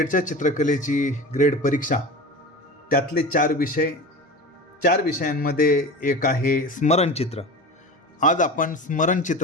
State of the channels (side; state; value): both; normal; correlation 0.31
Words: चित्रकलेची ग्रेड परीक्षा त्यातले चार विषयांमध्ये एक आहे स्मरणचित्र. आज आपण